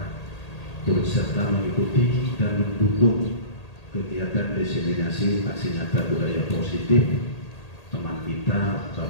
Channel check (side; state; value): right; late; 1.8 ms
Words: turut serta mengikuti dan mendukung kegiatan diseminasi aksi nyata budaya positif teman kita